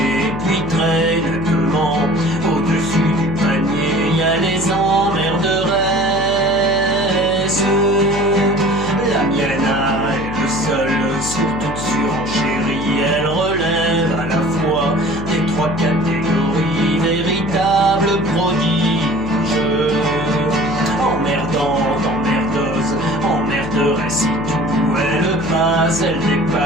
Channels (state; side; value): noise; left; hum, 8 dB below the sound